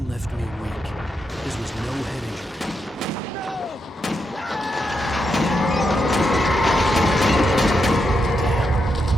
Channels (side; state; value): both; normal; correlation 0.83